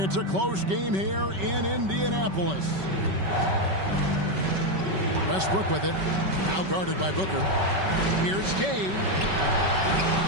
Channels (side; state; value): left; late; 5.2 ms